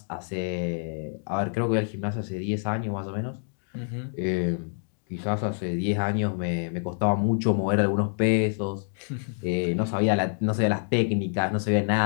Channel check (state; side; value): silent; right; 60 dB below the other